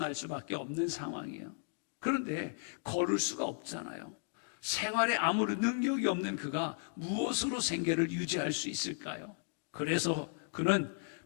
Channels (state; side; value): silent; right; digital silence